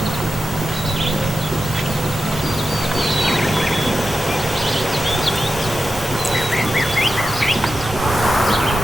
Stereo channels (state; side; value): normal; both; correlation 0.91